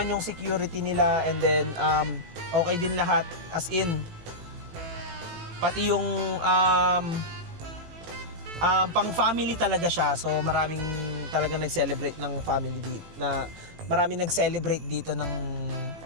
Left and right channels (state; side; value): late; left; 18 ms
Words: yung security nila, and then okay din lahat, as in pati yung pang family talaga siya. So maraming talagang nag-celebrate ng family dito, na maraming nag-celebrate dito ng